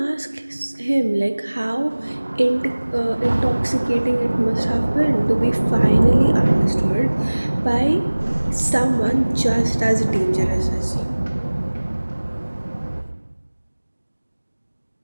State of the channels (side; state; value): both; inverted; correlation -1.00